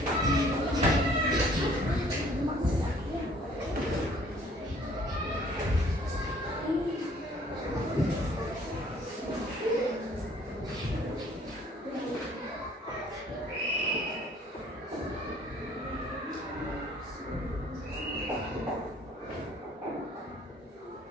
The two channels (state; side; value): normal; both; correlation 0.57